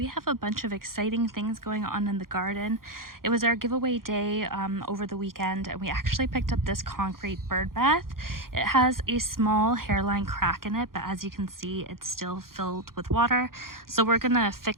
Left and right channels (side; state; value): left; late; 0.92 ms